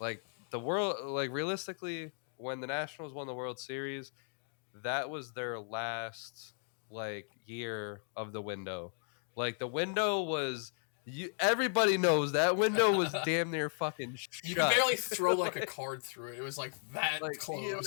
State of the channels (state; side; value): silent; right; 54 dB below the other